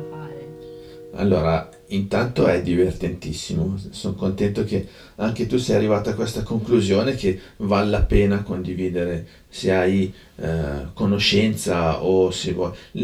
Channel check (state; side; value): identical; both; correlation 1.00